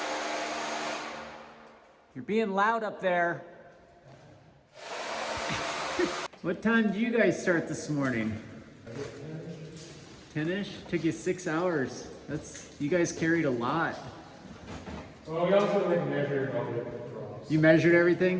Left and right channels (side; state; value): both; identical; correlation 1.00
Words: You're being loud up there. What time did you guys start this morning? 10-ish? Took you 6 hours. You guys carried a lot. Well, we also measured all the drops. You measured